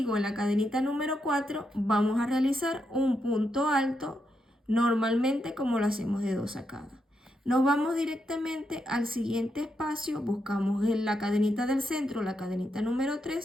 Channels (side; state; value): both; normal; correlation 0.82